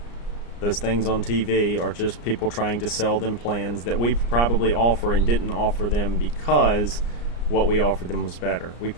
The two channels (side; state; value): right; late; 34 ms